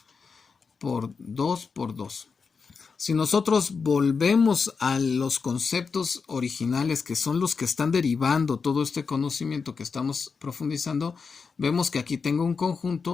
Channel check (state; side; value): quieter; right; 5.2 dB